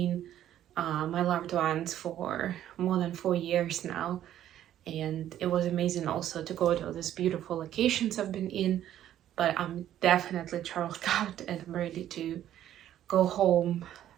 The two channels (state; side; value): quieter; left; 11.7 dB